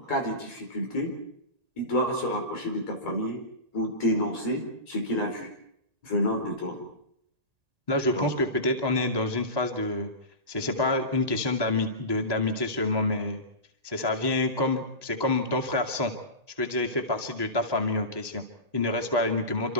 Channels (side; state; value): left; late; 1.8 ms